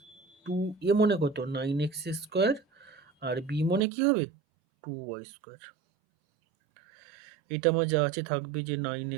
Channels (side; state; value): left; drops out; at 3.8 s